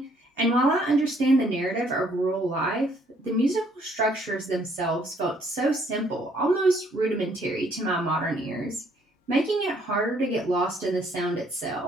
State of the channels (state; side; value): normal; both; correlation 0.65